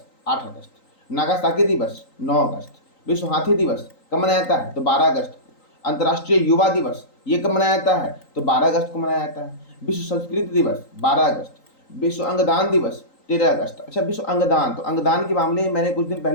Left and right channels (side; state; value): right; late; 3.9 ms